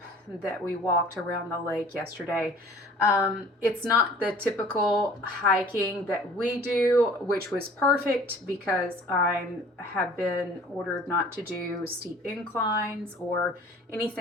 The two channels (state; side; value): normal; both; correlation 0.49